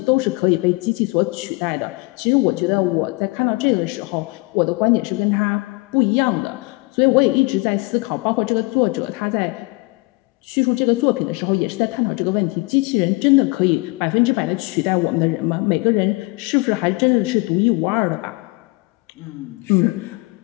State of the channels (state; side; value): quieter; right; 26.0 dB